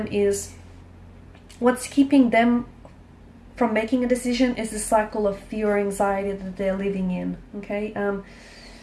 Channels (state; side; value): identical; both; correlation 1.00